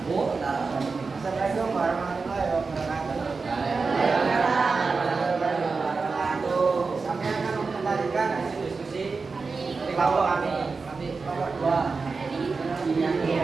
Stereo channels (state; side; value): quieter; left; 4.4 dB